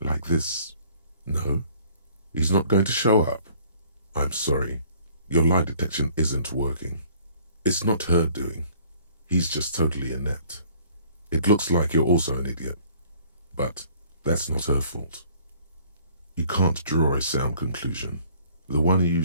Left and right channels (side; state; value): both; inverted; correlation -0.56